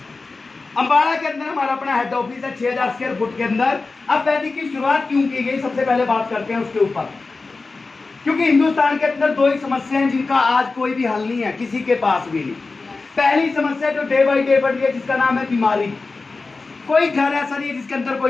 अंबाला के अंदर हमारा अपना हेड ऑफिस है 6000 स्क्वायर फुट के अंदर। अब वैदिक की शुरुआत क्यों की गई, सबसे पहले बात करते हैं उसके ऊपर। क्योंकि हिंदुस्तान के अंदर दो ही समस्या हैं जिनका आज कोई भी हल नहीं है, किसी के पास भी नहीं। पहली समस्या जो डे बाई डे बढ़ रही है जिसका नाम है बीमारी। कोई घर ऐसा नहीं है जिसके अंदर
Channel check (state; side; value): quieter; right; 3.9 dB